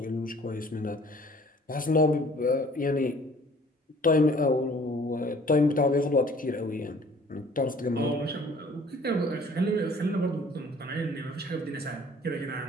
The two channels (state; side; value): normal; both; correlation 0.53